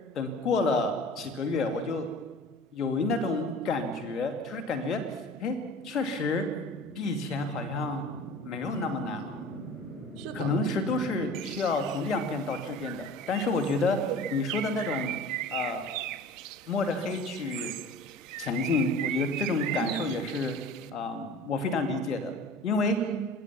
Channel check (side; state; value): both; normal; correlation 0.41